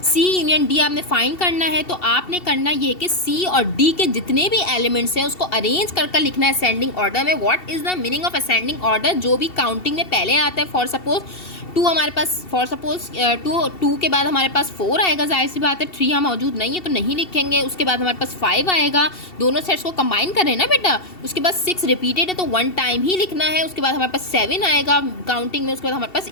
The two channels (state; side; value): late; right; 2.7 ms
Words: सी यूनियन डी आपने फाइंड करना है। तो आपने करना ये कि सी और डी के जितने भी एलिमेंट्स हैं उसको अरेंज कर लिखना है असेंडिंग ऑर्डर में। What is the meaning of ascending order, जो भी काउंटिंग में पहले आता है। फॉर सपोज 2 हमारे पास फॉर सपोज 2 के बाद हमारे पास 4 आएगा, जाहिर सी बात है 3 यहाँ मौजूद नहीं है तो नहीं लिखेंगे। उसके बाद हमारे पास 5 आएगा, दोनों सेट्स को कंबाइन कर रहे हैं ना बेटा। उसके बाद 6 रिपीटेड है तो 1 टाइम ही लिखना है। उसके बाद हमारे पास 7 आएगा काउंटिंग में। उसके बाद हमारे पास